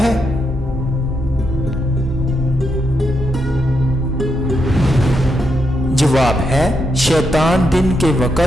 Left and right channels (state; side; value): normal; both; correlation 0.82